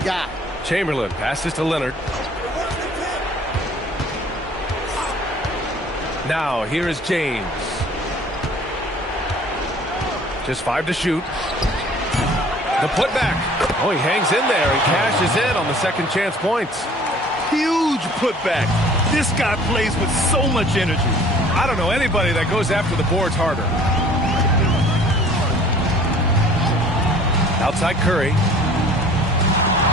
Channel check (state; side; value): normal; both; correlation 0.51